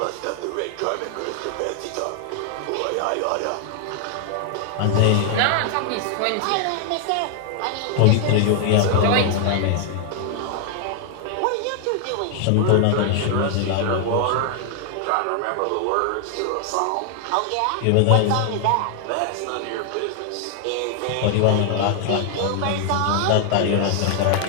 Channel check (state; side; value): different; both; correlation 0.00